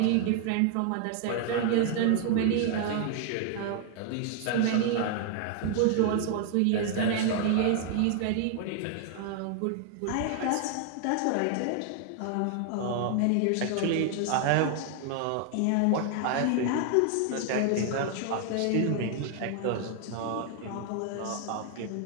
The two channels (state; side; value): different; both; correlation 0.00